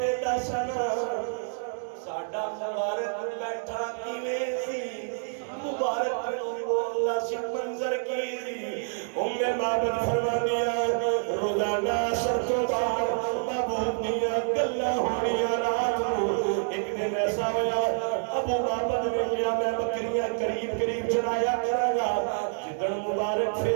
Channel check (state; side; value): silent; left; 60 dB below the other